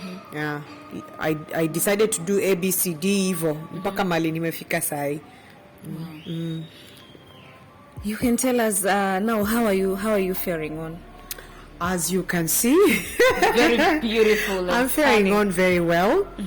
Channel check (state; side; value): identical; both; correlation 1.00